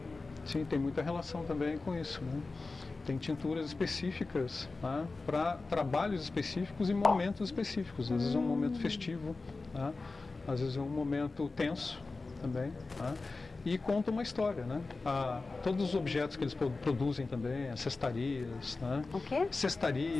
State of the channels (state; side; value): quieter; right; 3.7 dB